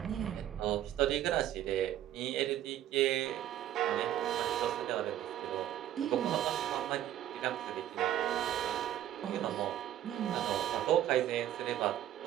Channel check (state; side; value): quieter; left; 12.0 dB